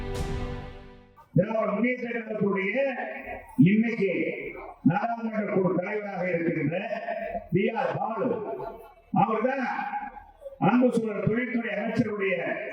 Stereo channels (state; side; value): identical; both; correlation 1.00